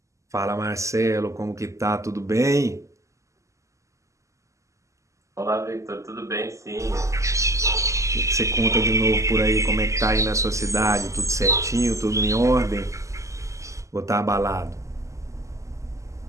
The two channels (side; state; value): left; late; 0.15 ms